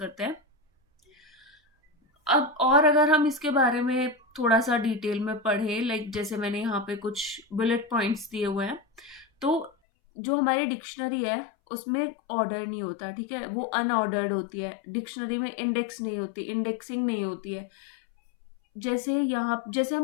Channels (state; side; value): drops out; right; at 9.7 s